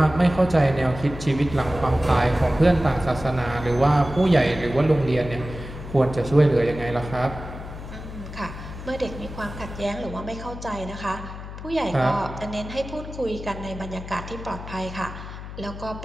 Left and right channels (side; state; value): left; noise; hum, 11 dB below the sound